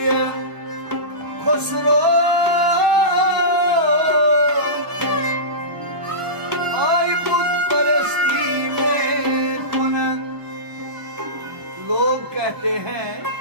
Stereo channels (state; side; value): late; left; 1.0 ms